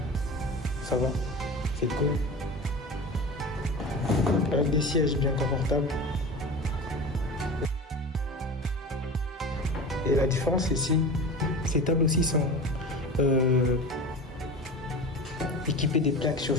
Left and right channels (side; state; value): both; normal; correlation 0.32